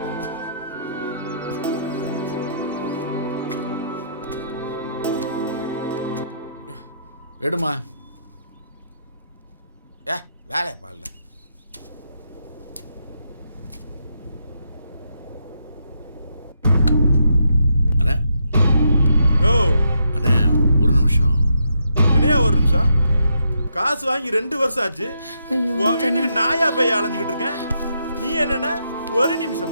எடுமா. வேலை பாருல. அண்ணா யோ அண்ணா ஒரு நிமிஷம். என்னையா ஒரு நிமிஷம்? காசு வாங்கி 2 வருஷம் ஆச்சு. உன் வீட்டுக்கு நாயா போய் அலைஞ்சுக்கிட்டு இருக்கேன். நீ என்னன்னா ஒரு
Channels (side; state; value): both; inverted; correlation -0.79